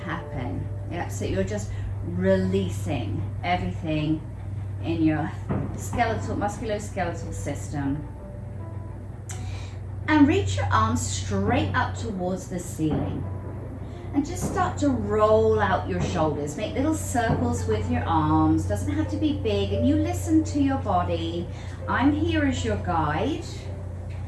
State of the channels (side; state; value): both; identical; correlation 1.00